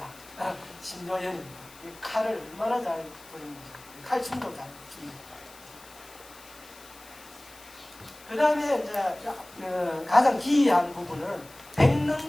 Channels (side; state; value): left; noise; hiss, 21 dB below the sound